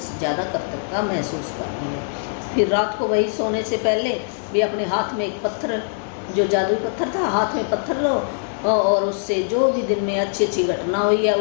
ज़्यादा कर्तव्यता महसूस करनी है। फिर रात को वही सोने से पहले भी अपने हाथ में एक पत्थर, जो जादुई पत्थर था, हाथ में पत्थर लो और उससे जो भी दिन में अच्छी अच्छी घटना हुई है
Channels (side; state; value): right; silent; digital silence